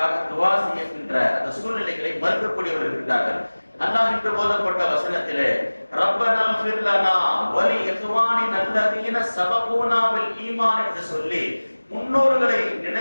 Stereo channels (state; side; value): inverted; both; correlation -1.00